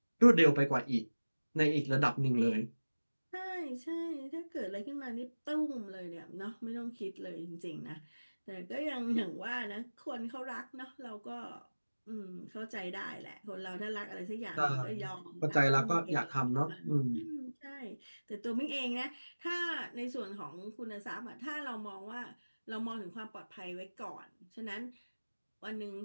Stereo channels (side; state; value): both; inverted; correlation -1.00